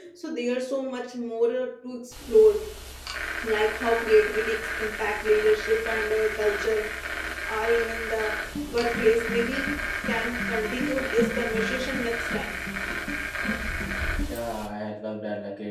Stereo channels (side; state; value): both; identical; correlation 1.00